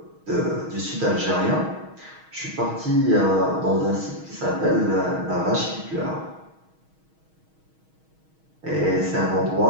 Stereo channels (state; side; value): late; left; 6.3 ms